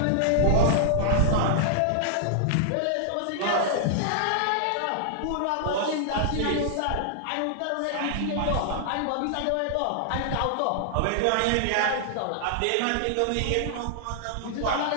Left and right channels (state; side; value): different; both; correlation -0.01